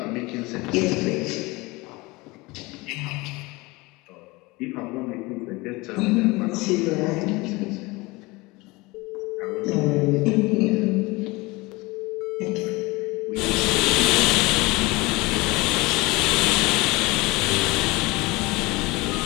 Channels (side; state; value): right; quieter; 23.2 dB